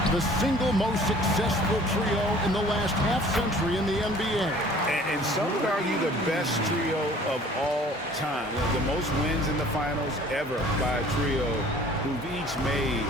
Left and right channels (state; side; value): normal; both; correlation 0.51